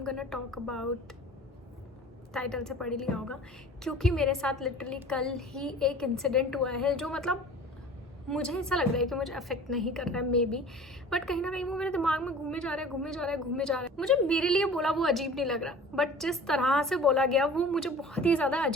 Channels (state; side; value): normal; both; correlation 0.43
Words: gonna talk about, title से पढ़ ही लिया होगा, क्योंकि मेरे साथ लिटरली कल ही एक इंसिडेंट हुआ है जो मतलब मुझे ऐसा लग रहा है कि मुझे अफेक्ट नहीं कर रहा है मे बी, बट कहीं ना कहीं वो मेरे दिमाग में घूमे जा रहा है। मुझे मेरे लिए बोला वो अजीब नहीं लग रहा, बट जिस तरह से बोला गया वो मुझे बहुत ही ज़्यादा